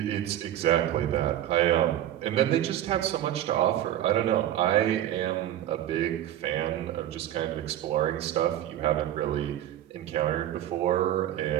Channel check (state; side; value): quieter; left; 12.3 dB